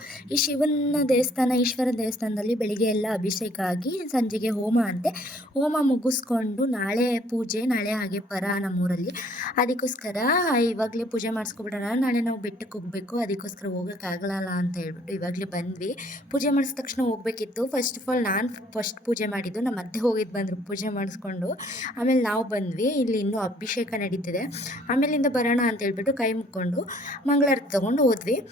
ಈ ಶಿವನ ದೇವಸ್ಥಾನ, ಈಶ್ವರ ದೇವಸ್ಥಾನದಲ್ಲಿ ಬೆಳಿಗ್ಗೆ ಎಲ್ಲ ಅಭಿಷೇಕ ಆಗಿ ಸಂಜೆಗೆ ಹೋಮ ಅಂತೆ. ಹೋಮ ಮುಗಿಸ್ಕೊಂಡು ನಾಳೆ ಪೂಜೆ, ನಾಳೆ ಹಾಗೆ ಪರ ನಮ್ಮೂರಲ್ಲಿ. ಅದಕ್ಕೋಸ್ಕರ ಇವಾಗಲೇ ಪೂಜೆ ಮಾಡಿಸ್ಕೊಬಿಡೋಣ, ನಾಳೆ ನಾವು ಬೆಟ್ಟಕ್ಕೆ ಹೋಗಬೇಕು, ಅದಕ್ಕೋಸ್ಕರ ಹೋಗೋಕ್ಕಾಗಲ್ಲ ಅಂತ ಹೇಳ್ಬಿಟ್ಟು ಇವಾಗಲೇ ಬಂದ್ವಿ. ಪೂಜೆ ಮಾಡಿದ ತಕ್ಷಣ ಹೋಗಬೇಕಿತ್ತು. ಫಸ್ಟ್ ಆಫ್ ಆಲ್ ನಾನು ಫಸ್ಟ್ ಪೂಜೆ ಮಾಡಿದ್ದು, ನಮ್ಮ ಅತ್ತೆ ಹೋಗಿದ್ದು ಬಂದರು ಪೂಜೆ ಮಾಡಿಸ್ಕೊಂಡು. ಆಮೇಲೆ ನಾವು ಬಂದ್ವಿ. ಇಲ್ಲಿ ಇನ್ನೂ ಅಭಿಷೇಕ ನಡೀತಿದೆ. ಆಮೇಲಿಂದ ಬರೋಣ ಅಂತ ಹೇಳ್ಬಿಟ್ಟು ಕೈ ಮುಕ್ಕೊಂಡು ಮಂಗಳಾರತಿ ತಗೊಂಡು ಹೋದ್ವಿ.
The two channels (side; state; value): both; normal; correlation 0.60